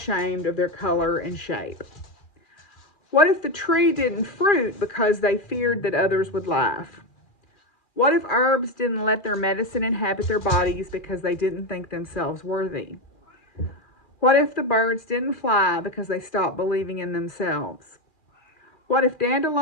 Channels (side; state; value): right; late; 2.4 ms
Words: of their color and shape? What if the tree didn't fruit because they feared that others would laugh? What if herbs didn't let their medicine inhabit their bodies because they didn't think themselves worthy? What if the birds didn't fly because they stopped believing in themselves? What if